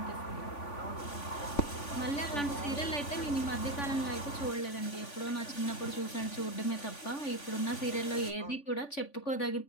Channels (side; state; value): right; late; 3.5 ms